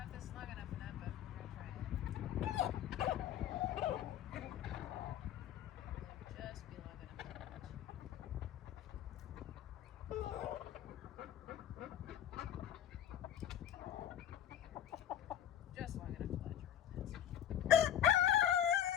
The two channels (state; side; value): quieter; right; 10.6 dB